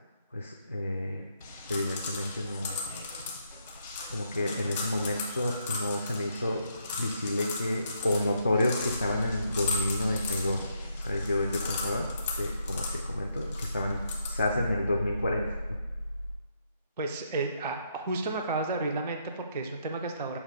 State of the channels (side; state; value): both; inverted; correlation -0.76